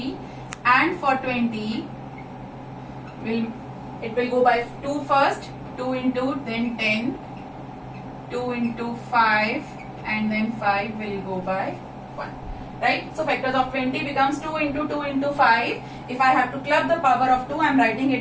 And for 20, it will go by 2 first, 2 into, then 10, 2 into 5, and then 5 will go by 1. Right? So factors of 20 becomes 2 into 2 into 5. If I have to club the power of 2, I am writing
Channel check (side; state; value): both; identical; correlation 1.00